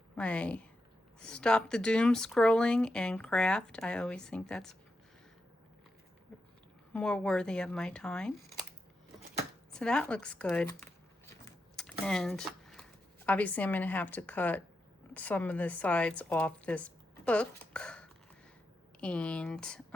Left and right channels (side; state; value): both; normal; correlation 0.86